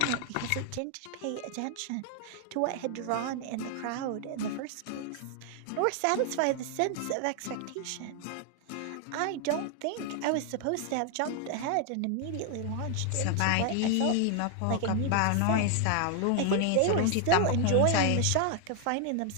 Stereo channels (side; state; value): both; different; correlation 0.00